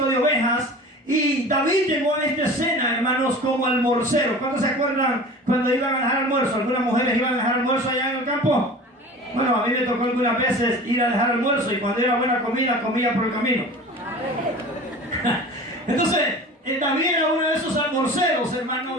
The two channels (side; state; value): both; normal; correlation 0.38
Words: de ovejas. Y David llegó a esta escena, hermanos, como almorcero. ¿Cuántos se acuerdan cuando iban a dejar almuerzo? ¿Algunas mujeres iban a dejar almuerzo allá en el campo? Bueno, a mí me tocó algunas veces ir a dejar almuerzo, y cuando era buena comida, comía por el camino. Entonces, David era uno de esos almorceros, hermano,